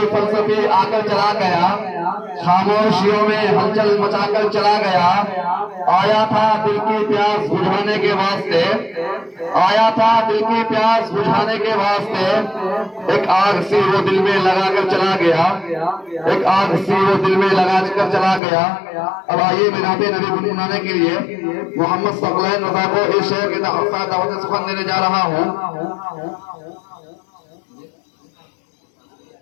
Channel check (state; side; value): drops out; right; at 18.4 s